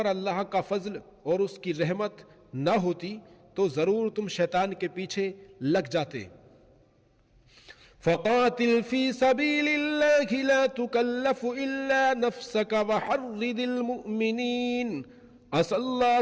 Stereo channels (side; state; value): both; identical; correlation 1.00